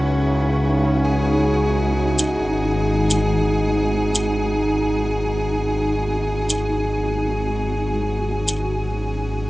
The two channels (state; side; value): normal; both; correlation 0.96